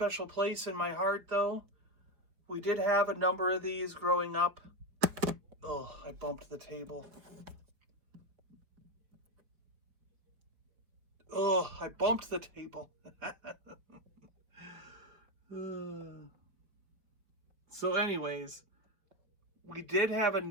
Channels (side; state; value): left; late; 5.2 ms